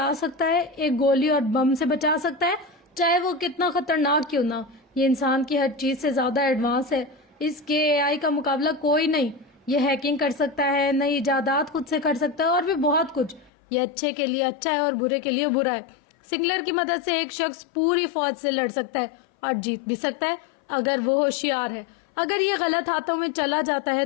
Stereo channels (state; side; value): drops out; right; at 13.5 s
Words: सकता है, एक गोली और बम से बचा सकता है, चाहे वो कितना खतरनाक क्यों ना हो। ये इंसान की हर चीज से ज्यादा एडवांस है। इसके एआई का मुकाबला कोई नहीं। ये हैकिंग कर सकता है, नई इजादात खुद से कर सकता है और भी बहुत कुछ। ये अच्छे के लिए अच्छा है और बुरे के लिए बुरा है। सिंगुलर की मदद से एक शख्स पूरी फौज से लड़ सकता है और जीत भी सकता है अगर वो होशियार है। अगर ये गलत हाथों में चला जाता है